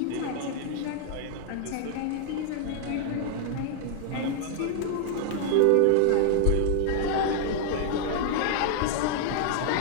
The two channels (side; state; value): both; different; correlation 0.00